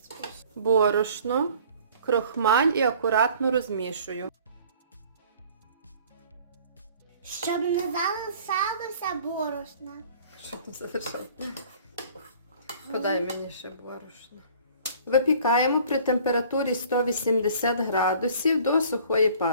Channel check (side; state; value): both; inverted; correlation -0.51